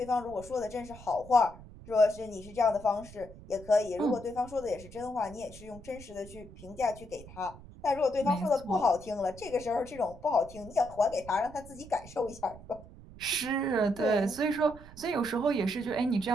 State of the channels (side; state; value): right; noise; rumble, 18 dB below the sound